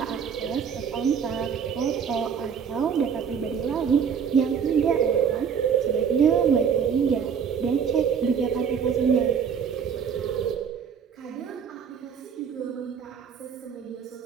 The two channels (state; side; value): quieter; left; 7.1 dB